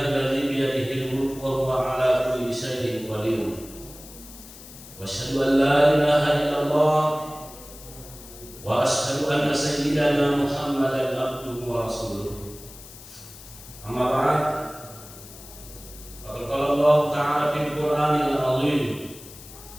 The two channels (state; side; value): noise; left; hiss, 17 dB below the sound